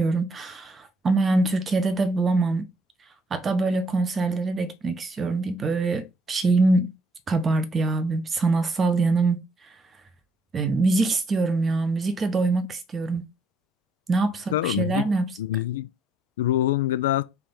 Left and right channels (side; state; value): both; normal; correlation 0.68